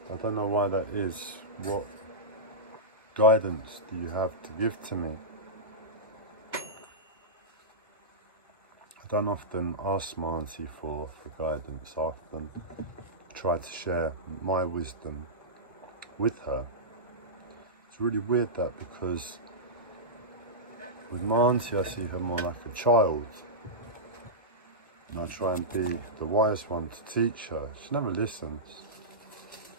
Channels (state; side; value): normal; both; correlation -0.14